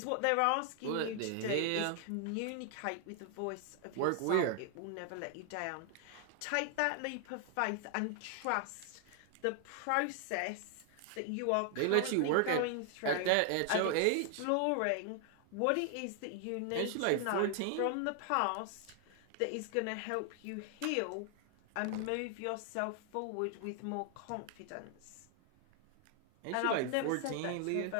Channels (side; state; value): both; different; correlation 0.00